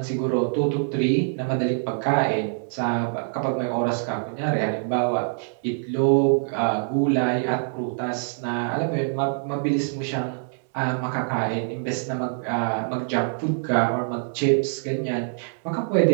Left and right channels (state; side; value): silent; left; 62 dB below the other